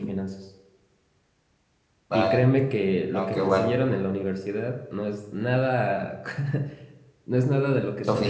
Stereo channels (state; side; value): identical; both; correlation 1.00